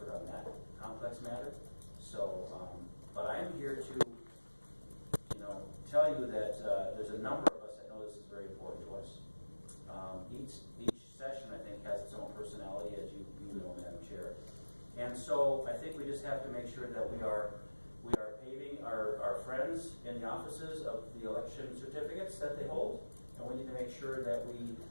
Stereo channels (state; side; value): inverted; both; correlation -1.00